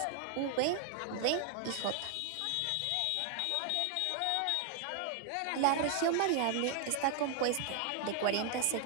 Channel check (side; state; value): both; different; correlation 0.00